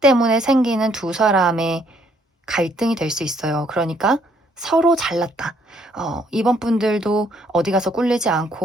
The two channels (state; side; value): normal; both; correlation 0.67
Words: 생기는 두 사람의 갈등이 될 수 있어요. 그러니까 서로 잘났다. 이번 분들도 어디 가서 꿀리지